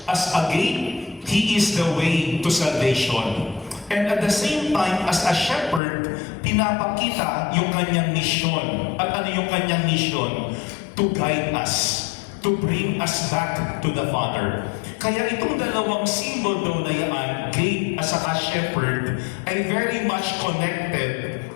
As a gate, He is the way to salvation. And at the same time, as a shepherd, pinapakita yung kanyang mission. At ano yung kanyang mission? To guide us. To bring us back to the Father. Kaya itong dalawang symbol daw na yan, gate at saka shepherd, ay very much connected,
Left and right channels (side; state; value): right; drops out; at 5.8 s